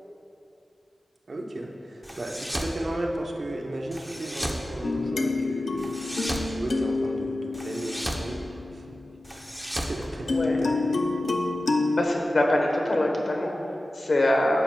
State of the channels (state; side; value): normal; both; correlation 0.94